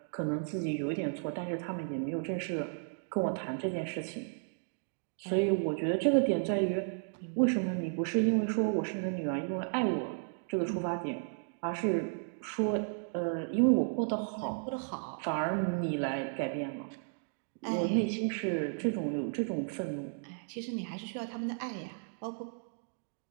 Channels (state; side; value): silent; left; digital silence